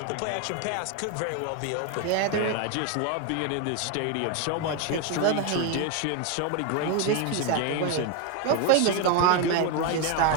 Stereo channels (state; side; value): different; both; correlation 0.01